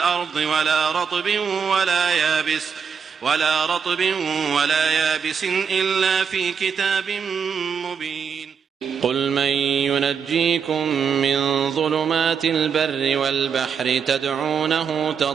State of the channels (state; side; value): quieter; left; 6.7 dB